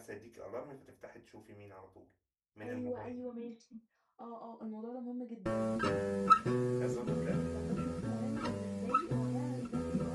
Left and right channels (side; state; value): both; identical; correlation 1.00